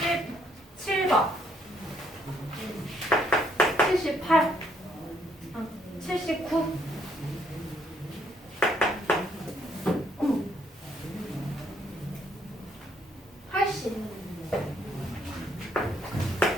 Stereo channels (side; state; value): both; normal; correlation 0.69